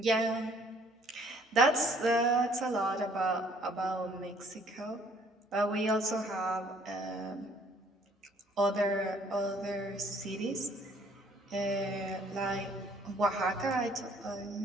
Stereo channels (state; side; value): normal; both; correlation 0.60